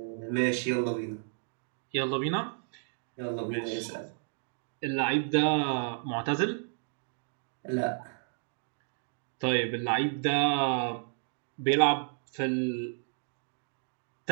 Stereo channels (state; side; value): silent; left; digital silence